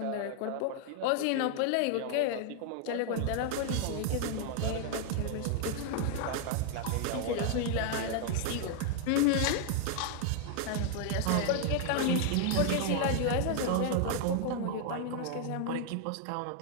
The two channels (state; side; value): different; both; correlation 0.00